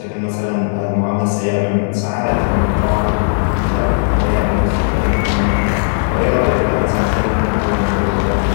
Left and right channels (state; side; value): silent; right; digital silence